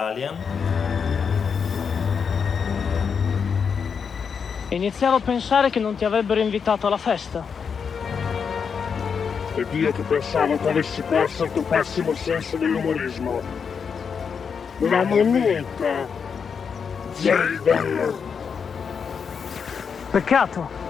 Iniziavo a pensare che non ti avrebbero invitato alla festa. Ed io che pensavo che avessi perso il tuo pessimo senso dell'umorismo. La moneta. Jaden. Peccato.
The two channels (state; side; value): quieter; right; 6.3 dB